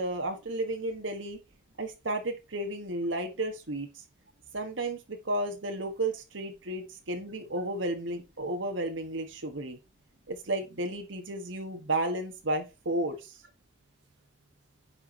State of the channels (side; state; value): both; normal; correlation -0.16